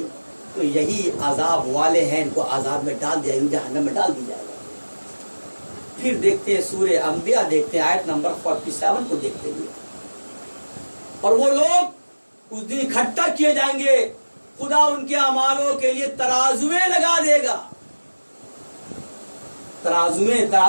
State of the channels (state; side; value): inverted; both; correlation -1.00